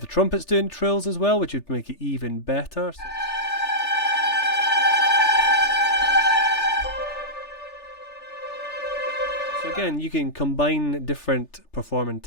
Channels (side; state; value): right; late; 3.3 ms